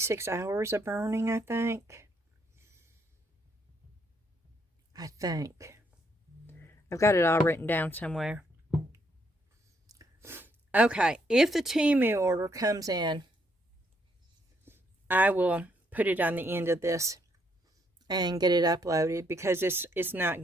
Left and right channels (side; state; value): both; normal; correlation 0.72